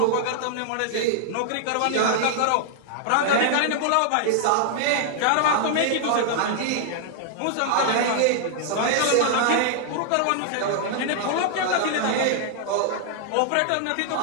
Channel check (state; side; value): different; both; correlation -0.01